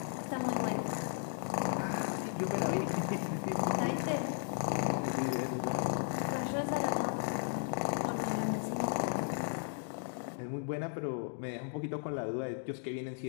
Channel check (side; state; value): right; silent; digital silence